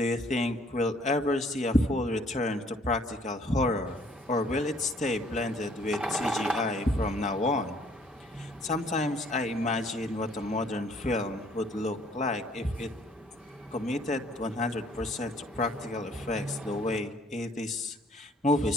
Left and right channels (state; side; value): normal; both; correlation 0.60